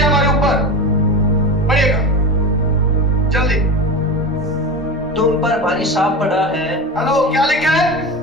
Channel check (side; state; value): both; normal; correlation 0.25